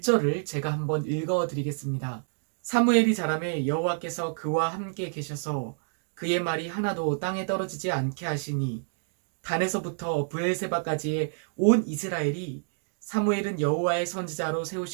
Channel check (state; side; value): silent; left; digital silence